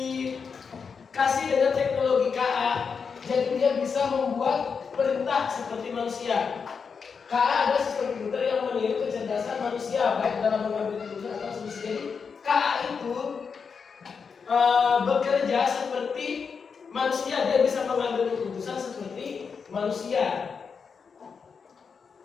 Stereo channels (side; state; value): right; quieter; 5.8 dB